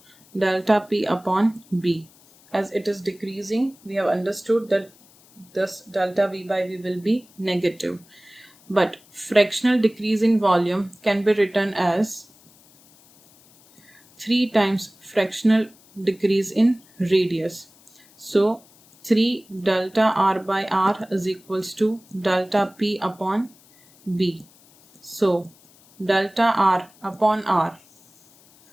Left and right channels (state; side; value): noise; left; hiss, 28 dB below the sound